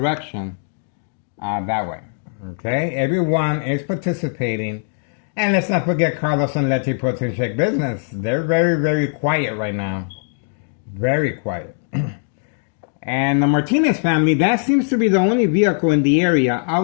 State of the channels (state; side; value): silent; right; digital silence